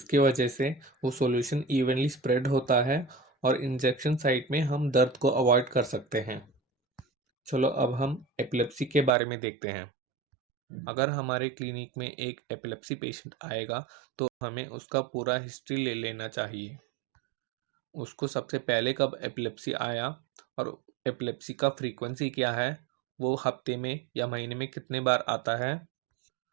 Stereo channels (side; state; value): left; drops out; at 9.1 s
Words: वजह से वो सॉल्यूशन इवनली स्प्रेड होता है और इंजेक्शन साइट में हम दर्द को अवॉइड कर सकते हैं। चलो अब हम एपिलेप्सी के बारे में देखते हैं। अगर हमारे क्लिनिक में एक एपिलेप्सी पेशेंट आएगा तो हमें उसका पूरा हिस्ट्री ले लेना चाहिए। उसको सबसे पहले कब एपिलेप्सी आया और एपिलेप्सी का फ्रीक्वेंसी क्या है, वो हफ्ते में या महीने में कितने बार आता है